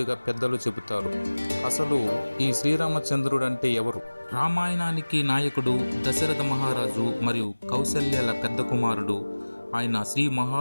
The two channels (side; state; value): both; inverted; correlation -1.00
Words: పెద్దలు చెబుతారు. అసలు ఈ శ్రీరామచంద్రుడు అంటే ఎవరు? రామాయణానికి నాయకుడు దశరథ మహారాజు మరియు కౌసల్యల పెద్ద కుమారుడు. ఆయన శ్రీ